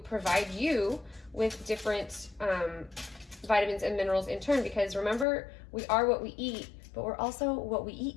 provide you with different vitamins and minerals in turn, because remember, we are what we eat, but we're also what we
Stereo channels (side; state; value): right; drops out; at 5.2 s